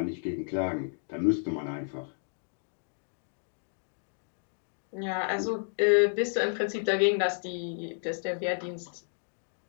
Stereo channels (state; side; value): silent; right; digital silence